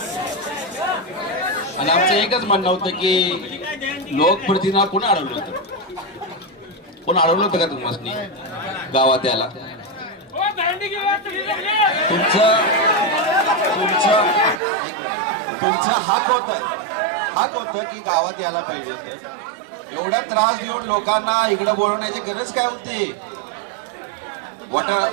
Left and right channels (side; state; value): left; drops out; at 14.6 s